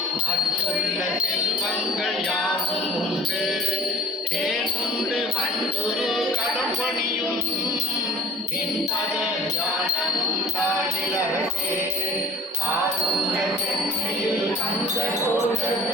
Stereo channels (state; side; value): normal; both; correlation 0.44